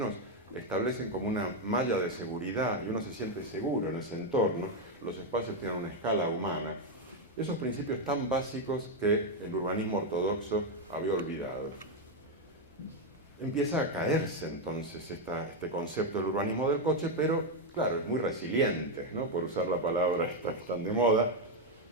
establecen como una malla de seguridad y uno se siente seguro en ese entorno, los espacios tienen una escala humana. Esos principios tan básicos que el urbanismo ortodoxo había olvidado. Empieza a caerse entonces este concepto del urbanismo del coche, pero claro, es muy resiliente, ¿no? Por usar la palabra tan de moda,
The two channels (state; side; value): normal; both; correlation 0.04